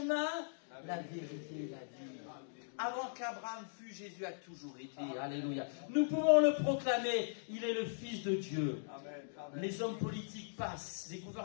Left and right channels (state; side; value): silent; right; digital silence